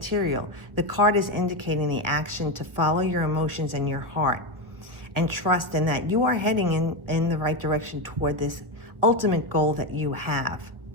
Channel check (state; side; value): late; left; 1.4 ms